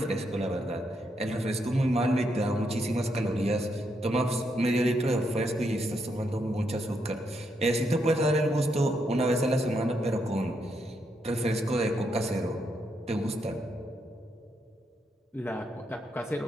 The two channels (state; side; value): normal; both; correlation 0.79